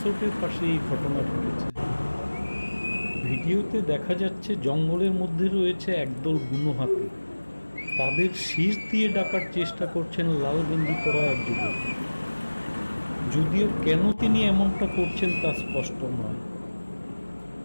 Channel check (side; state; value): both; inverted; correlation -1.00